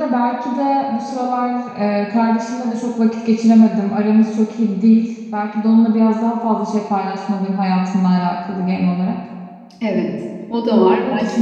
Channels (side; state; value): both; identical; correlation 1.00